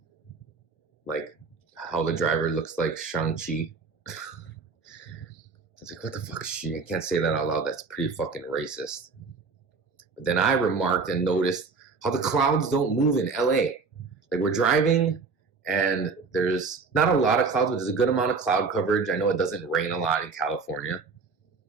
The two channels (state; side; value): quieter; left; 4.7 dB